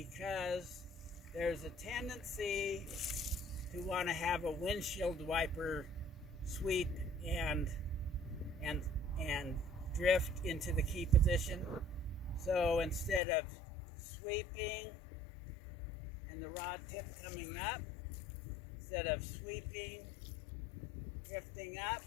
there's a tendency to want to have a windshield wiper sweep and drift into the key position. So instead of sweeping and the rod tip coming up, instead of sweeping, drifting up,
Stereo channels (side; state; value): right; drops out; at 13.2 s